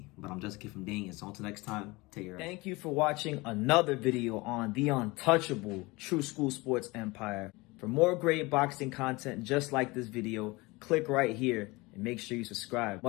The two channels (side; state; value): right; quieter; 23.4 dB